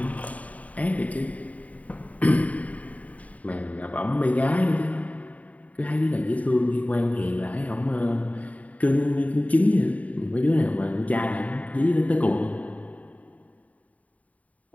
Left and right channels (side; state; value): right; late; 0.070 ms